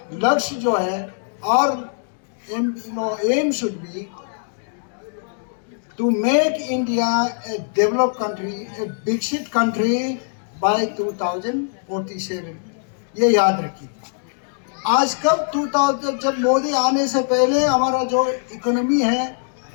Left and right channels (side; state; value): right; silent; digital silence